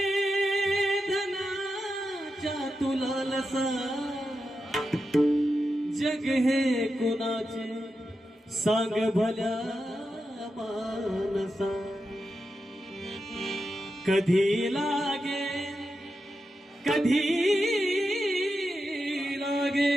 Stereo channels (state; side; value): normal; both; correlation 0.88